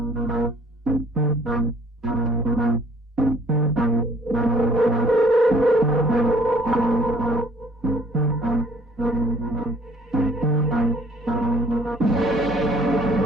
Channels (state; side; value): normal; both; correlation 0.58